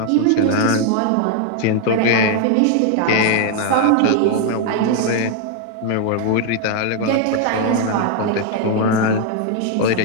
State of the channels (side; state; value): both; different; correlation 0.01